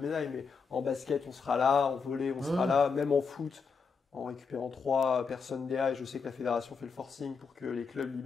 mais en basket on sera là, en volley on sera là, même en foot, en récupérant 3 personnes DA. Et je sais que la fédération fait le forcing pour que les clubs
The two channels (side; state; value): right; quieter; 5.4 dB